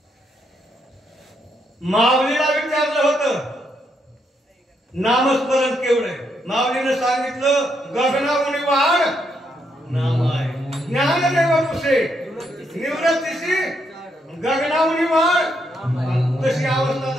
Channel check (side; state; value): both; normal; correlation 0.77